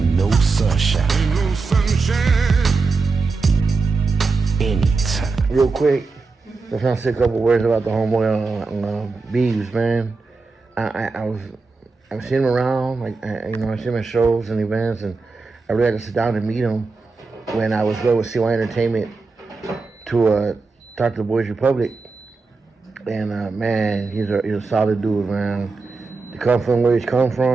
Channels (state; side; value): quieter; left; 4.1 dB